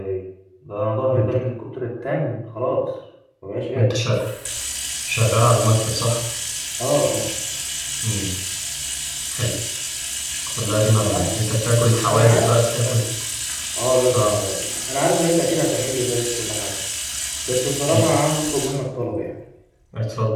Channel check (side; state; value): both; identical; correlation 1.00